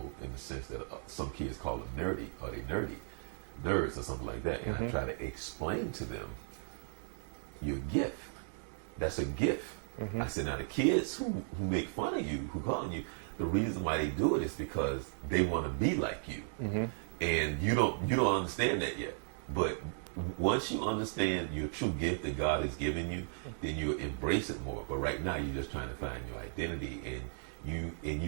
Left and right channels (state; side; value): silent; left; digital silence